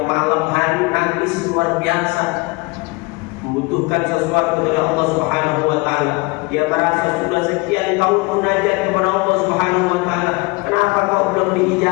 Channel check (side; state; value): right; quieter; 26.4 dB